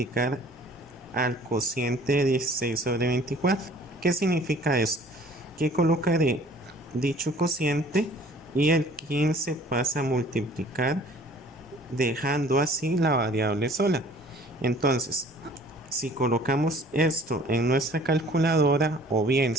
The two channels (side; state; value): both; normal; correlation 0.53